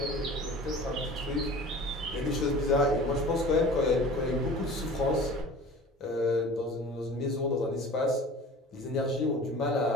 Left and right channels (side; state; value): both; normal; correlation 0.41